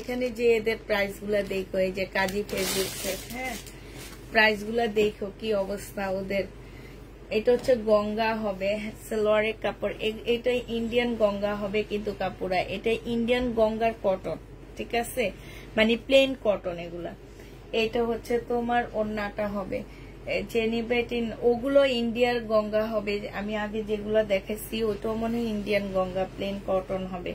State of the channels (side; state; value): both; identical; correlation 1.00